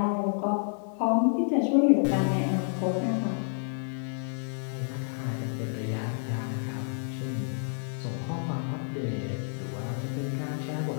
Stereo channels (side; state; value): right; silent; 58 dB below the other